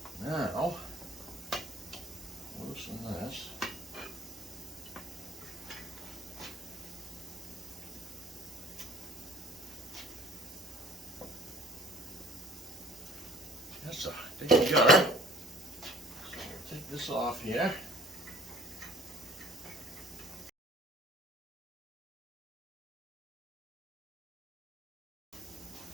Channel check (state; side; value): normal; both; correlation 0.53